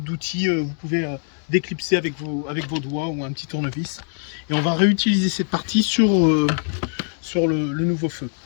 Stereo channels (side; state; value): right; silent; 55 dB below the other